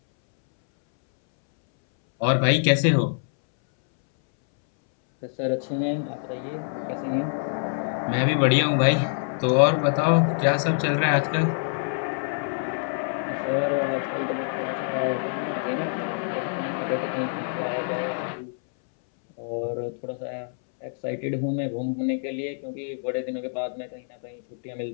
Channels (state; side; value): silent; right; 61 dB below the other